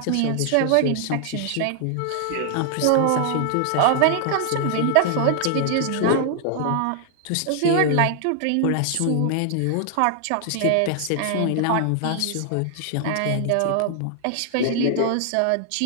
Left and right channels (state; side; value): different; both; correlation 0.00